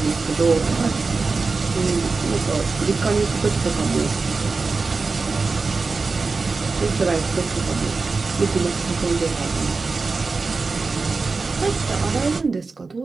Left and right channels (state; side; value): quieter; left; 4.2 dB